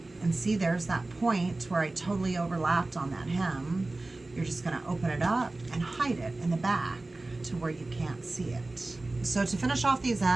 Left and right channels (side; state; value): left; quieter; 3.0 dB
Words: And see, there's that point where I totally overlapped on that hem. You're just gonna open it up and hide it in the back to where you can't see it. So to finish off these